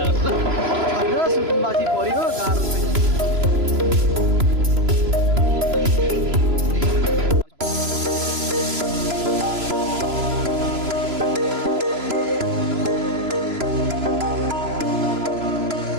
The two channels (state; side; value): late; left; 3.0 ms